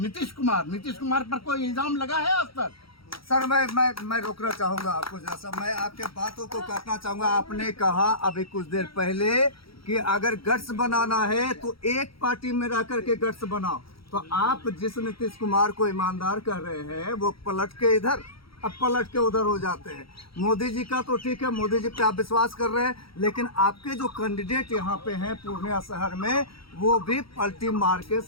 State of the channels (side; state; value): right; late; 0.75 ms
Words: कुमार पर कोई इल्जाम लगा है आज तक? सर मैं रोकना चाहूंगा आपको, जैसा मैं आपके बातों को काटना चाहूंगा। आपने कहा अभी कुछ देर पहले कि अगर गट्स बनाना है तो एक पार्टी में रह करके गट्स बनाओ। तो आप जिस नीतीश कुमार को ईमानदार कर रहे हैं वो पलट के इधर, अब पलट के उधर हो जाते हैं। मोदी जी का तो ठीक है, मोदी जी पे आप विश्वास कर रहे हैं, लेकिन आपके जो कैंडिडेट यहाँ पे हैं पूर्णिया शहर में वो भी पलटी मार के